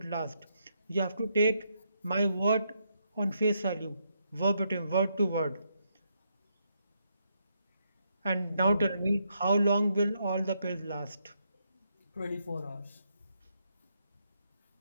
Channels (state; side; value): inverted; both; correlation -0.78